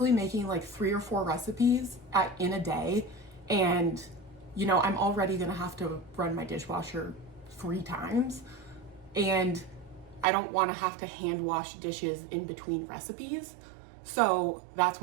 making like 3 or 4 recipes in a day. And, you know, I'm already gonna have to run my dishwasher 3 times. And I don't wanna have to hand wash dishes in between recipes. So that's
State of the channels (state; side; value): drops out; left; at 10.2 s